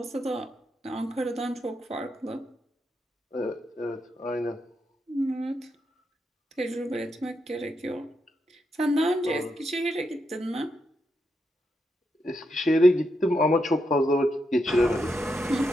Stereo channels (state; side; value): normal; both; correlation 0.83